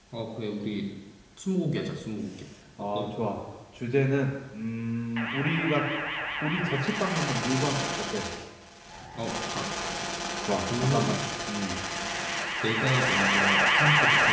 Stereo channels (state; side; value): identical; both; correlation 1.00